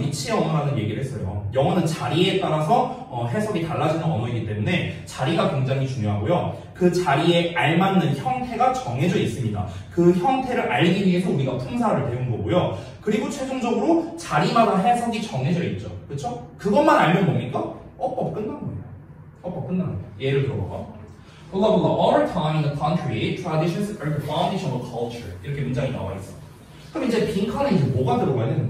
위치 언어라는 얘기를 했어요. 영어는 자리에 따라서 해석이 달라지는 언어이기 때문에 자리가 굉장히 중요하고요. 그 자리에 알맞는 형태가 정해져 있습니다. 그 형태를 알기 위해서 우리가 품사를 배운 거고요. 그리고 최종적으로 자리마다 해석이 정해져 있죠. 그렇죠? 그것만 알면 뭡니까? 어법 끝난 거예요. 어법 끝난 거예요. 예를 들어봐. blah blah blah. All time in the country, traditions are the foundation of culture. 이렇게 문장이 나와 있어. 그럼 이제 빈칸에 이제 뭐가 들어가야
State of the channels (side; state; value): both; identical; correlation 1.00